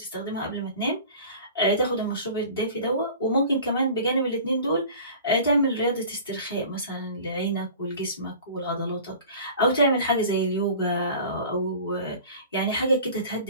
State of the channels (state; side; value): inverted; both; correlation -0.42